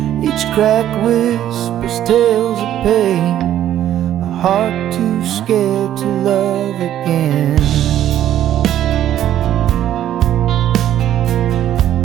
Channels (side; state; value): left; quieter; 11.6 dB